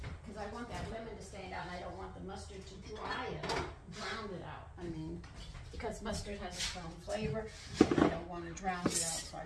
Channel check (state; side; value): identical; both; correlation 1.00